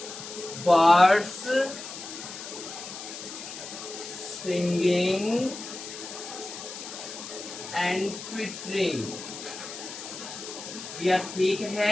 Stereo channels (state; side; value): noise; left; hiss, 10 dB below the sound